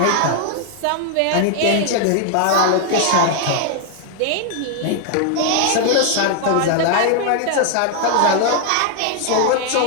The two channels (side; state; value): both; different; correlation 0.00